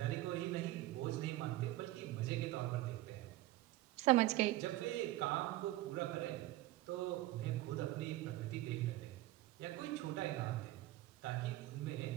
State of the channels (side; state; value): left; quieter; 16.6 dB